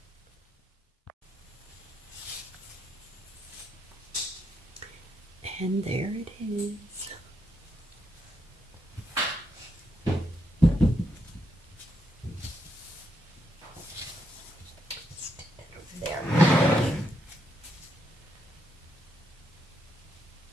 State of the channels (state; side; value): normal; both; correlation 0.79